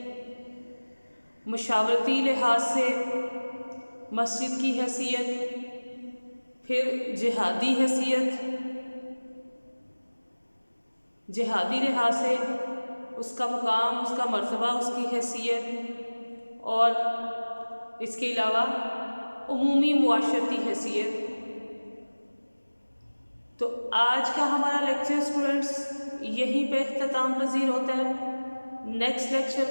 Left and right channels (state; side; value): inverted; both; correlation -1.00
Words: مشاورتی لحاظ سے مسجد کی حیثیت، پھر جہادی حیثیت، جہادی لحاظ سے اس کا مقام، اس کا مرتبہ، اس کی حیثیت، اور اس کے علاوہ عمومی معاشرتی حیثیت۔ تو آج کا ہمارا لیکچر اسٹوڈنٹس یہیں پہ اختتام پذیر ہوتا ہے۔ نیکسٹ